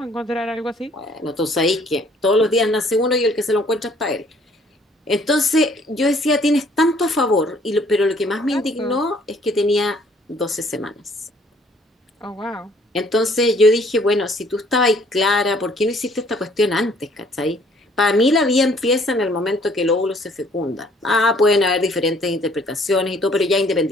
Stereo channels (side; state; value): both; normal; correlation 0.60